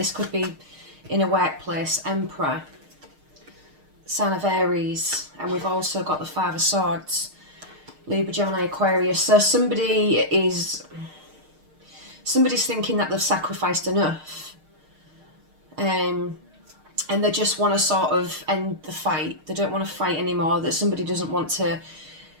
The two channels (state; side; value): late; left; 6.5 ms